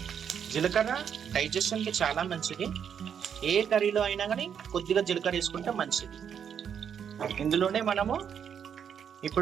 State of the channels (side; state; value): left; quieter; 8.0 dB